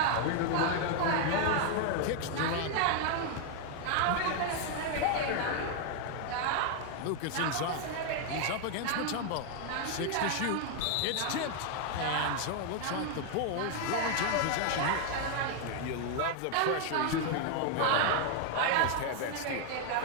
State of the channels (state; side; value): different; both; correlation 0.00